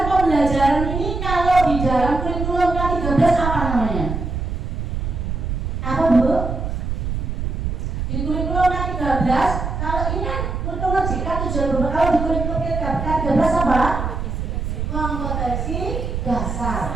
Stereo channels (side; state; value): right; noise; rumble, 3 dB below the sound